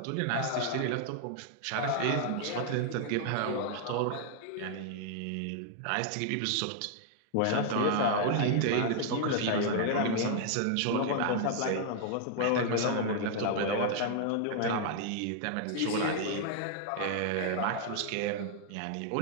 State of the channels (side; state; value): both; different; correlation 0.00